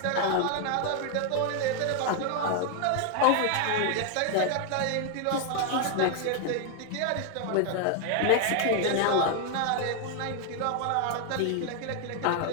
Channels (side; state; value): both; different; correlation 0.00